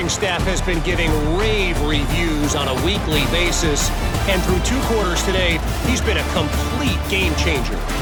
staff has been giving rave reviews on a weekly basis. And through 2 quarters today, he's been a complete game changer.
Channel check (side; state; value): both; identical; correlation 1.00